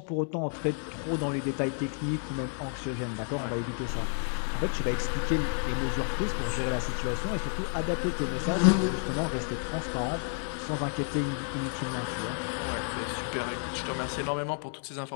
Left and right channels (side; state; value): right; silent; 57 dB below the other